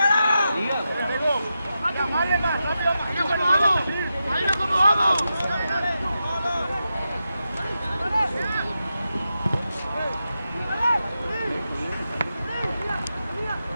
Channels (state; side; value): inverted; both; correlation -0.89